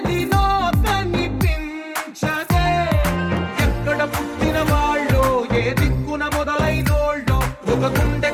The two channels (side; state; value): both; identical; correlation 1.00